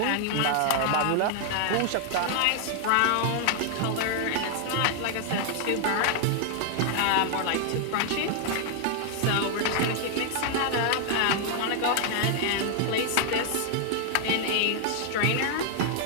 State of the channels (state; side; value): different; both; correlation 0.00